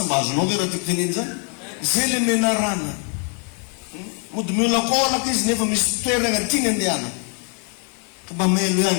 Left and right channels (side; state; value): right; quieter; 38.3 dB